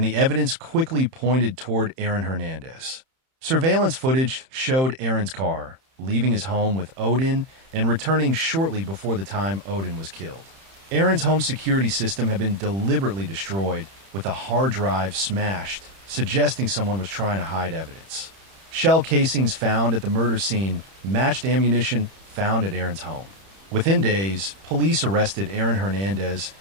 the evidence quickly pointed toward Aaron Hernandez. Surveillance footage showed Aaron's car leaving his home with Odin and returning shortly before the time Odin was killed. Aaron's home security system had been deliberately destroyed, with a hard drive smashed, suggesting someone was trying to hide evidence. Shell casings found at the murder scene matched ammunition found at Aaron's home. Within days, police arrested Aaron Hernandez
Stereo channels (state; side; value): late; left; 31 ms